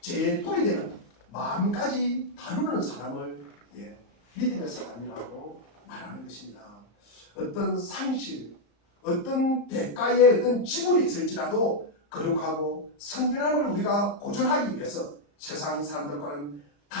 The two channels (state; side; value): late; right; 34 ms